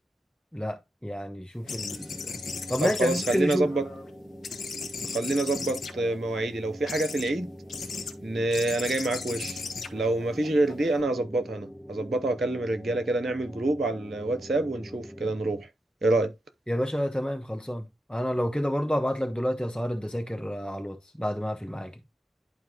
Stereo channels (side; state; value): both; normal; correlation 0.85